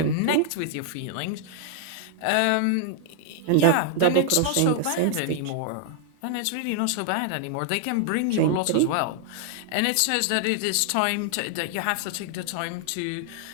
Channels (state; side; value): different; both; correlation -0.01